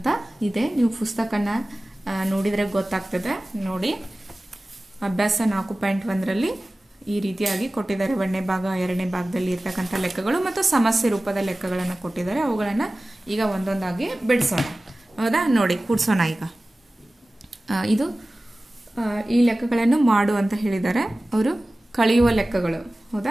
ಇದೆ, ನೀವು ಪುಸ್ತಕನ ನೋಡಿದರೆ ಗೊತ್ತಾಗ್ತದೆ. ನೋಡಿ, ಅಭ್ಯಾಸ 4.1ರಲ್ಲಿ ಈ ರೀತಿಯಾಗಿ ಕೊಟ್ಟಿದ್ದಾರೆ. 1ನೇ ಭಾಗ 2ನೇ ಭಾಗದಲ್ಲಿ ಇರ್ತಕ್ಕಂಥ ಲೆಕ್ಕಗಳು ಮತ್ತು ಸಮಸ್ಯೆ ರೂಪದ ಲೆಕ್ಕಗಳನ್ನು ಕೊಟ್ಟಿದ್ದಾರೆ. ಅವುಗಳನ್ನು ಈಗ ಒಂದೊಂದಾಗಿ ಬಿಡಿಸೋಣ. ಹೌದಾ? ನೋಡಿ, ಕೂಡಿಸೋಣ. ಈಗ ಇದು ಈ ಲೆಕ್ಕಗಳನ್ನು ಮಾಡು ಅಂತ ಹೇಳಿದ್ದಾರೆ. ಅವರು ಕಳೆಯುವ ಲೆಕ್ಕಗಳು.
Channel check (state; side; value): normal; both; correlation 0.97